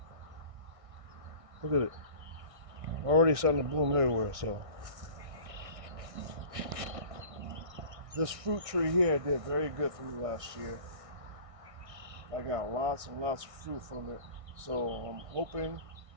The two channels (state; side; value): late; left; 1.6 ms